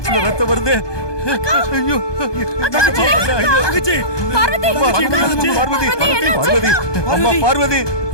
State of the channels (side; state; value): right; late; 1.2 ms